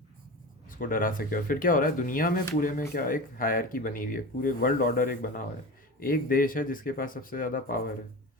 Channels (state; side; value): normal; both; correlation 0.29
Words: उसको डरा सके। और फिर क्या हो रहा है दुनिया में, पूरे में क्या, एक हायरकी बनी हुई है, पूरे वर्ल्ड ऑर्डर एक बना हुआ है। एक देश है जिसके पास सबसे ज़्यादा पावर है,